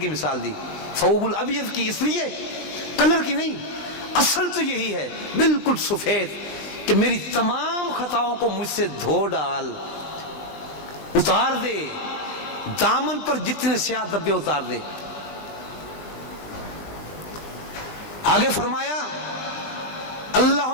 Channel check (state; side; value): late; right; 20 ms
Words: مثال دی، ثوب الابیض کی، اس لیے کلر کی نہیں، اصل تو یہی ہے بالکل سفید، کہ میری تمام خطاؤں کو مجھ سے دھو ڈال، اتار دے، دامن پر جتنے سیاہ دبے اتار دے۔ آگے فرمایا